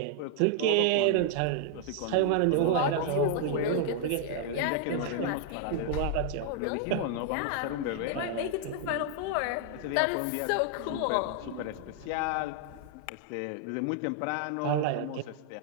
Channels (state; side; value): different; both; correlation 0.00